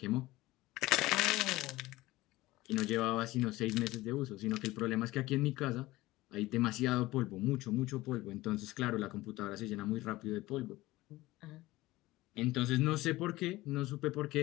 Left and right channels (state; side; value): quieter; right; 18.5 dB